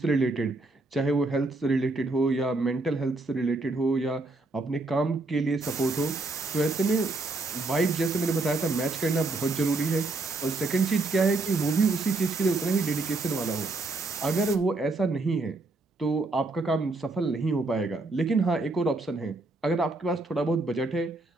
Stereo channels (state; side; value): quieter; left; 3.2 dB